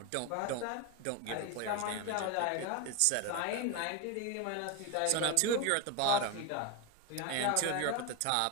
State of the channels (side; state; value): both; different; correlation 0.02